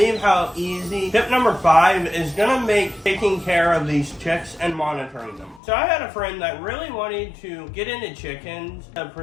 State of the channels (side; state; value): right; drops out; at 5.6 s